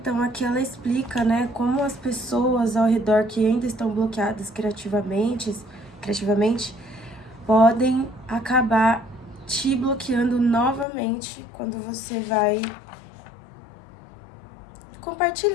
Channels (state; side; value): drops out; right; at 10.9 s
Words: aqui ela explica, né, como as pessoas ao redor que ainda estão bloqueadas criativamente, podem acabar te bloqueando novamente quando você vai